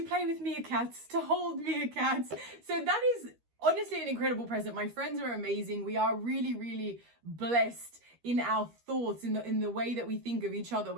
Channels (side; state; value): left; late; 13 ms